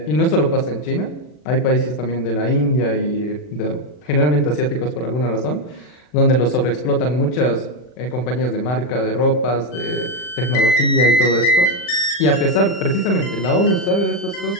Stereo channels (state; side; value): late; right; 40 ms